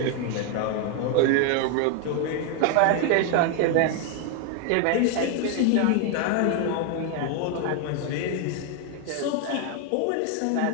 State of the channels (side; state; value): both; different; correlation 0.01